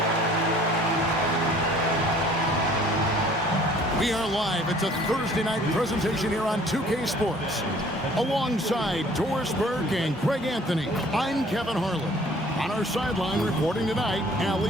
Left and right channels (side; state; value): both; normal; correlation 0.54